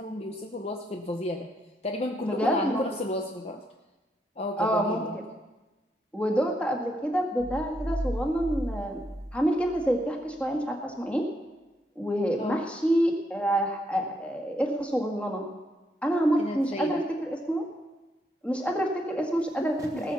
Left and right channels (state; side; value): normal; both; correlation 0.77